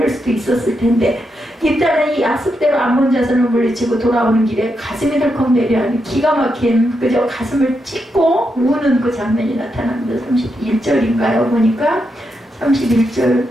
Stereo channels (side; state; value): both; normal; correlation 0.83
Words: 수도 있었을 텐데, 일단은 이 약속대로 암몬 자손을 물리치고 돌아오는 길에 가슴이 덜컥 내려앉는 기가 막힌, 그저 가슴을 찢고 우는 그 장면이 나타납니다. 31절인가요? 보니까 31절